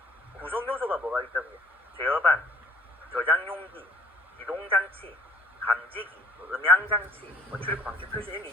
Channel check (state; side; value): normal; both; correlation 0.54